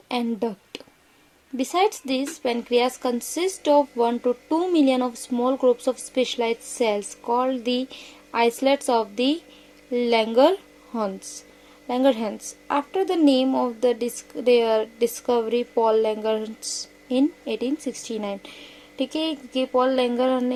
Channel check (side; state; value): both; identical; correlation 1.00